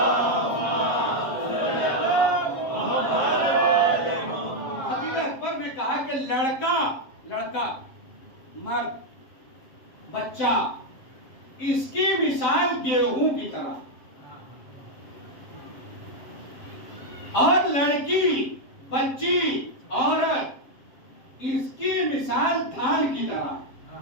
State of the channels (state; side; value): late; right; 7.5 ms